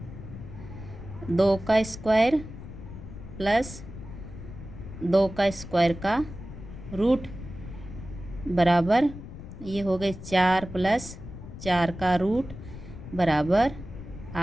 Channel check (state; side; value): noise; left; rumble, 12 dB below the sound